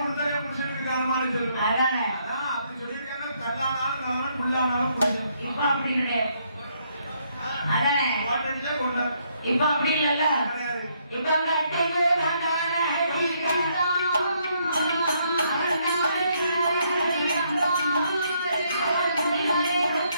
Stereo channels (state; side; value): inverted; both; correlation -0.72